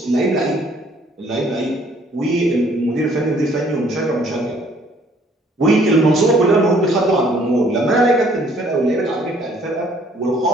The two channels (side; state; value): both; normal; correlation 0.61